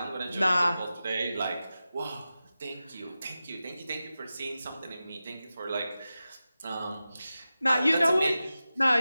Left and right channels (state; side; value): inverted; both; correlation -0.94